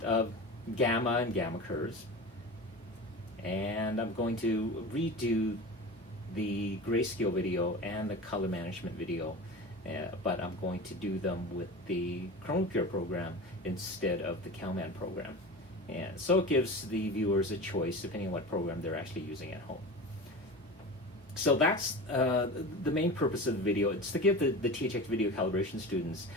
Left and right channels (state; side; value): normal; both; correlation 0.31